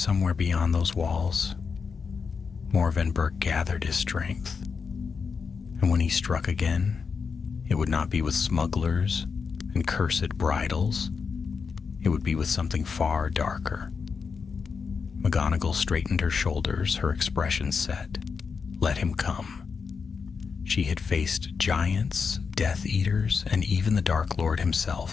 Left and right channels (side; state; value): right; quieter; 5.5 dB